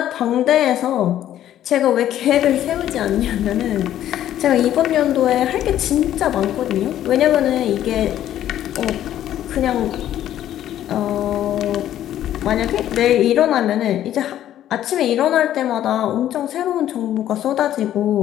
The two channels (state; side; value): quieter; right; 11.9 dB